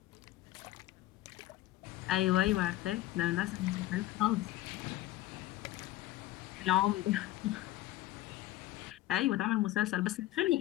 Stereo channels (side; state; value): right; quieter; 15.4 dB